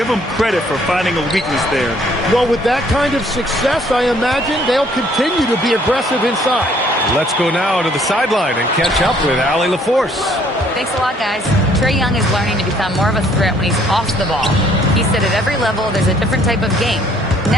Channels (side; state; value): both; normal; correlation 0.62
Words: them credit for finding a weakness there. Well, with that kind of success, I imagine they'll continue to be aggressive inside. Let's go now to the sideline and catch up with Allie LaForce. Thanks a lot, guys. Trae Young is learning to become more of a threat when he's off the ball. He said at every level there's a different type of game.